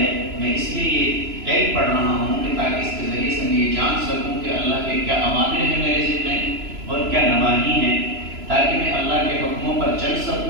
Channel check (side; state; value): left; late; 3.0 ms